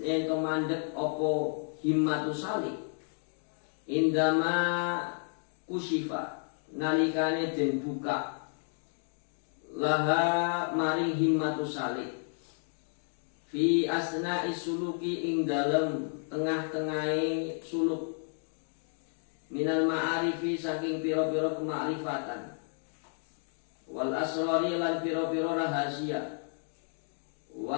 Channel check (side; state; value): right; silent; 57 dB below the other